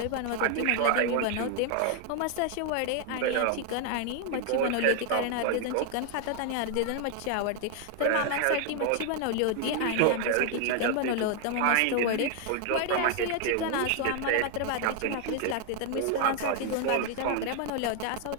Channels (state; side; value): different; both; correlation 0.00